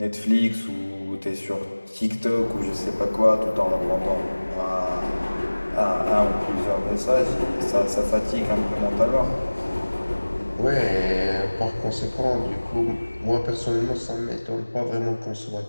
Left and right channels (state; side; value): inverted; both; correlation -1.00